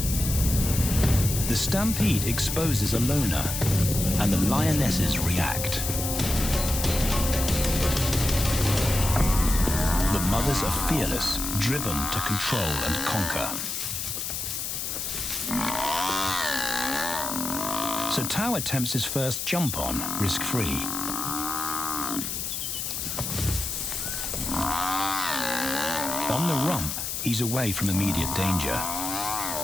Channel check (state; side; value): noise; left; hiss, 3 dB below the sound